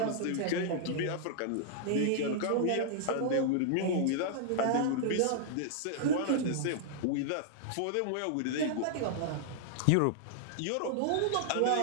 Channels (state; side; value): different; both; correlation -0.01